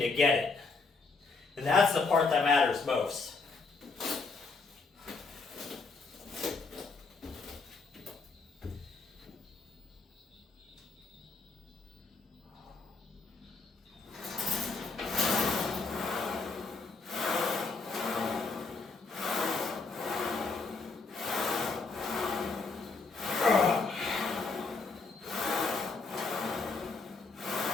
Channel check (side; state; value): right; quieter; 4.2 dB